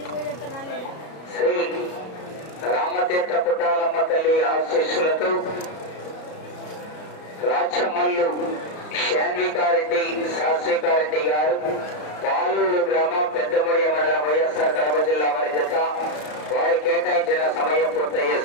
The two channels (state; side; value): late; right; 33 ms